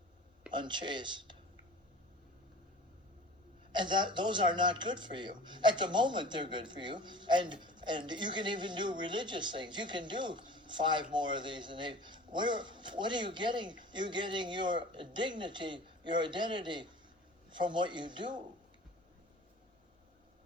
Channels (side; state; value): both; normal; correlation 0.42